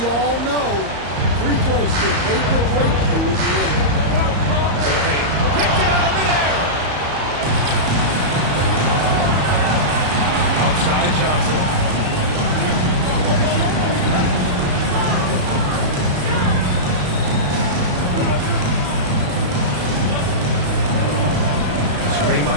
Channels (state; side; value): late; left; 34 ms